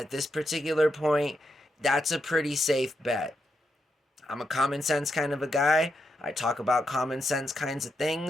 this particular point, that's a pretty safe bet. I'm a common sense kind of a guy. I talk about common sense kinds of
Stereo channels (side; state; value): both; normal; correlation 0.83